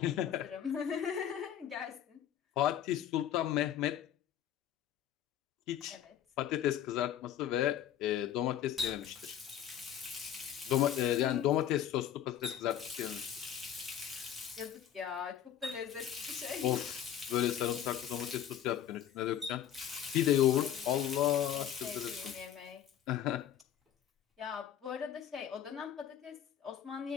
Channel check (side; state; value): right; quieter; 10.3 dB